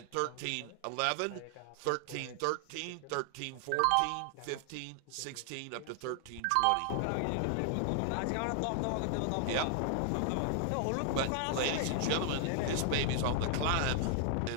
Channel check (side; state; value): both; different; correlation 0.00